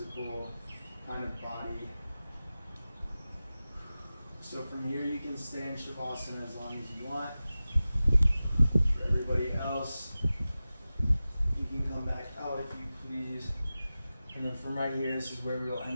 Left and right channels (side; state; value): both; inverted; correlation -0.95